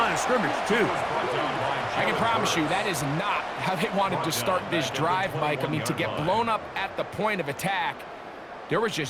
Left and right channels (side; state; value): both; identical; correlation 1.00